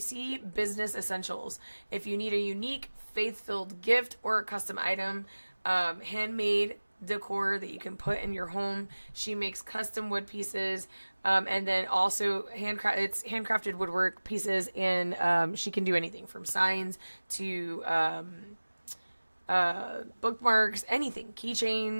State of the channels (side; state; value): both; inverted; correlation -1.00